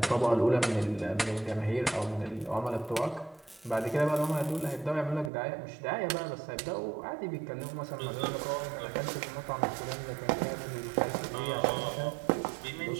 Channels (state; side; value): drops out; left; at 5.3 s